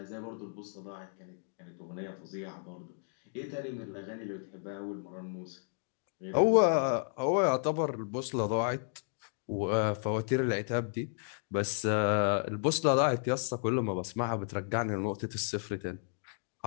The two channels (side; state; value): right; silent; 56 dB below the other